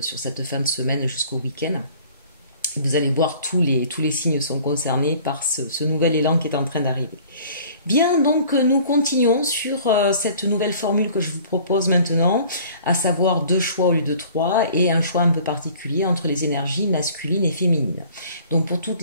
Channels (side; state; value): both; inverted; correlation -0.51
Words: fin de semaine jusqu'au week-end. Vous allez voir, tous les signes sont concernés par ce nouvel élan qui est en train d'arriver. Bien, donc nous continuons sur cette nouvelle formule que je vous propose maintenant, à savoir 2 choix au lieu de 3 et un choix un peu particulier entre les énergies masculines et féminines. Donc pour toutes